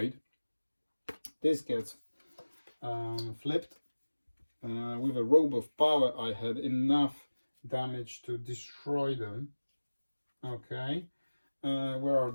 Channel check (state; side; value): inverted; both; correlation -1.00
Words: This gets flipped. With a robe of power, I had enough damage to destroy them. Okay, where are